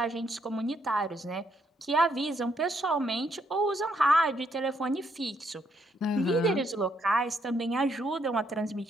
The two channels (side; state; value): both; normal; correlation 0.74